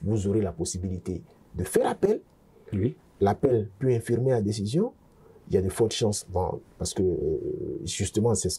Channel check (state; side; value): identical; both; correlation 1.00